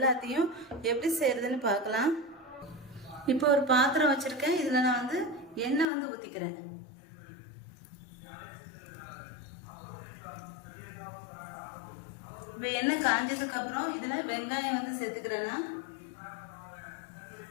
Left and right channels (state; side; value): drops out; right; at 5.9 s